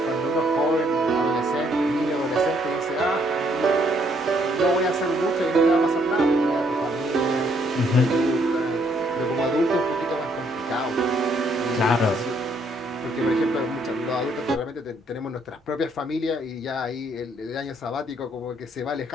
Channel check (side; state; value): both; normal; correlation 0.69